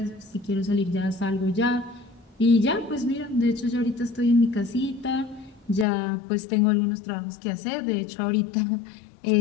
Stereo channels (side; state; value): right; drops out; at 5.9 s